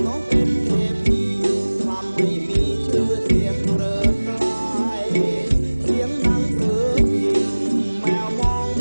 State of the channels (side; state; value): both; inverted; correlation -1.00